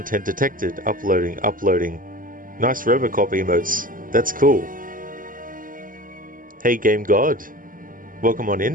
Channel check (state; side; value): late; left; 0.40 ms